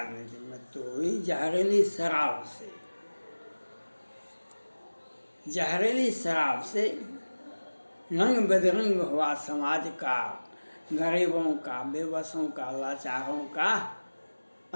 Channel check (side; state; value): both; inverted; correlation -1.00